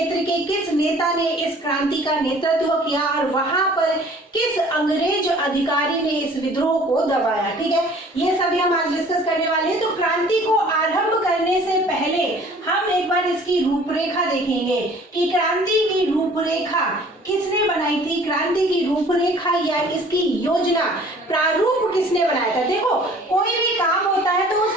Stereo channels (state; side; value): normal; both; correlation 0.51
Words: के किस नेता ने इस क्रांति का नेतृत्व किया और वहां पर किस अंग्रेज अधिकारी ने इस विद्रोह को दबाया। ठीक है, ये सभी हम आज डिस्कस करने वाले हैं। तो क्रांति को आरंभ करने से पहले हम एक बार इसकी रूपरेखा देखेंगे कि क्रांति की रूपरेखा किसने बनाई थी, क्रांति की रूपरेखा या इसकी योजना प्रारूप किसने बनाया था। देखो, कोई भी काम होता है तो उस